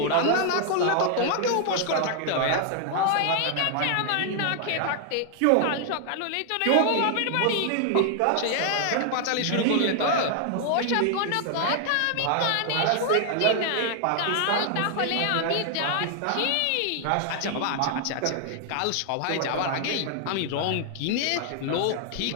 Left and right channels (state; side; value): different; both; correlation 0.00